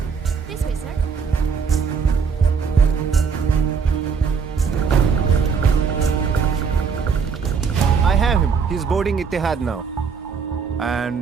This way, sir. I have him. He's boarding Etihad now.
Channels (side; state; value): left; quieter; 5.8 dB